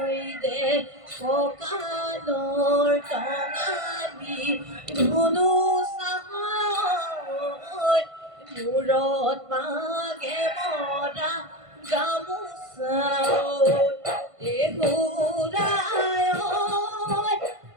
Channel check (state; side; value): late; left; 1.5 ms